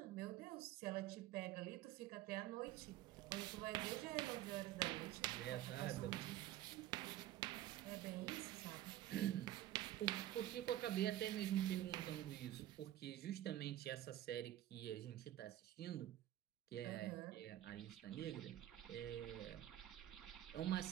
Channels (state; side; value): quieter; left; 13.5 dB